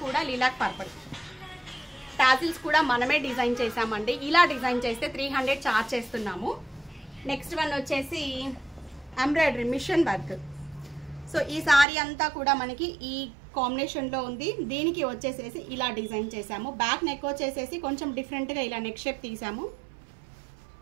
కూడా లిలాక్ పర్పల్. టాజిల్స్ కూడా మనమే డిజైన్ చేసామండి. ఇలా డిజైన్ చేస్తే 300 చార్జ్ చేస్తున్నాము. నెక్స్ట్ వన్ వచ్చేసి ఎంబ్రాయిడరీ మిషన్ వర్క్. సో ఈ శారీ అంతా కూడా మనకి ఈ కాంబినేషన్లో ఉంది. దీనికి వచ్చేసేసి ఇలా డిజైన్ చేసాము. బ్యాక్ నెక్ వచ్చేసేసి కొంచెం డిఫరెంట్గా ఇలా నెక్ షేప్ తీసాము.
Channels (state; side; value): drops out; left; at 11.9 s